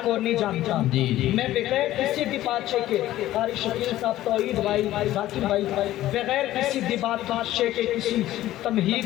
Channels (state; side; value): quieter; right; 14.5 dB